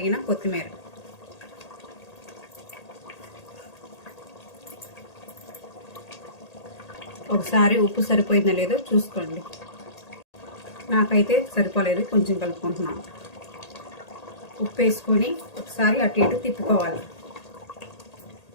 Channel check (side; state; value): right; late; 1.8 ms